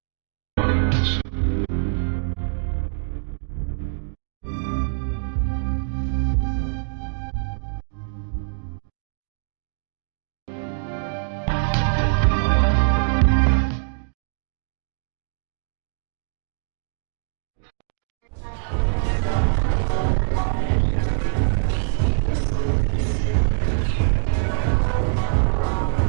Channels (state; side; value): silent; left; digital silence